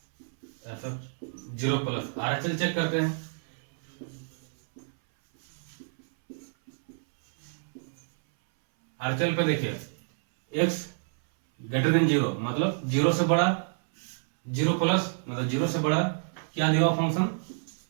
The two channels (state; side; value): silent; left; 59 dB below the other